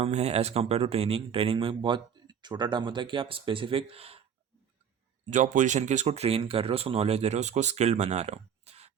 है as compare to training. Training में बहुत छोटा term होता है कि आप स्पेसिफिक जॉब पोजीशन के उसको ट्रेन कर रहे हो, उसको नॉलेज दे रहे हो, उसको स्किल्ड बना रहे हो।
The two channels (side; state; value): left; quieter; 8.0 dB